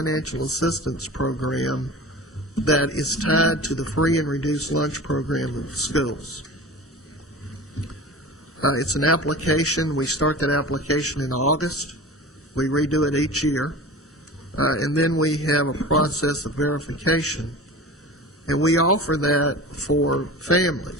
assistance program that is tied to the free and reduced lunch program of schools. It's an application. We start that application in August. We redo it each year. And then we have a process of verification. And we offer that for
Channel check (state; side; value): normal; both; correlation 0.35